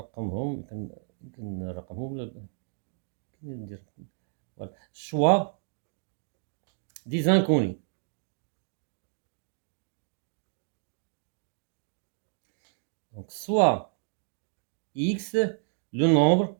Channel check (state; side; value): silent; left; digital silence